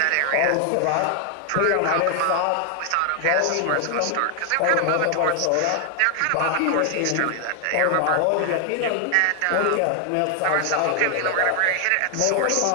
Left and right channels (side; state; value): both; different; correlation 0.00